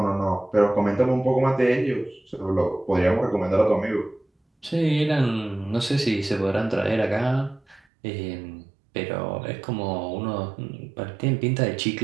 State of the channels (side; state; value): left; drops out; at 7.8 s